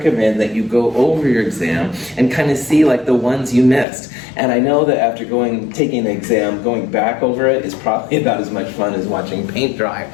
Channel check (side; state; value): right; drops out; at 3.9 s